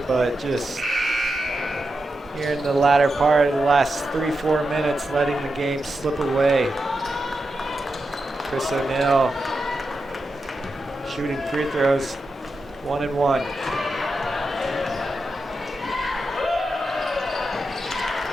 but just here in the latter part of the last 3-4 minutes, letting the game slip away. Chris O'Neill shooting free throws, 1 and 1.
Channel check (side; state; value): both; normal; correlation 0.88